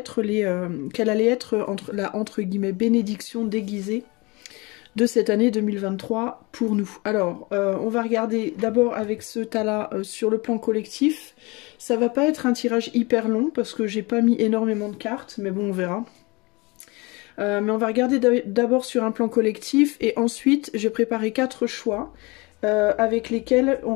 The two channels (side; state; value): right; quieter; 25.7 dB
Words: la entre guillemets bénédiction déguisée de cette année 2023 pour nous. Alors, on va regarder d'abord avec ce tas-là sur le plan collectif. Ça va pas être un tirage hyper long parce que j'ai pas mis énormément de cartes, mais bon, on verra. Mais on va regarder d'abord sur un plan collectif et ensuite j'ai préparé 4 choix avec lesquels